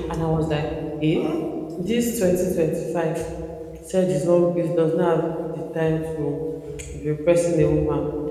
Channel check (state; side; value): identical; both; correlation 1.00